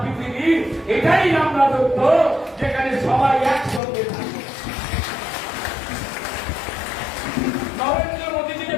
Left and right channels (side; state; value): right; drops out; at 3.8 s